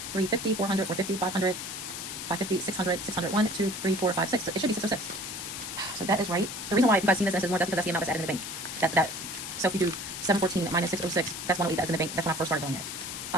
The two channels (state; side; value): noise; left; hiss, 7 dB below the sound